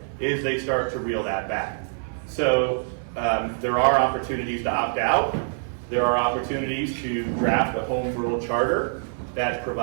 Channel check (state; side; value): silent; left; 62 dB below the other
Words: is they start to reel that back. So there are opportunities to opt out. There are opportunities to draft a home rule charter that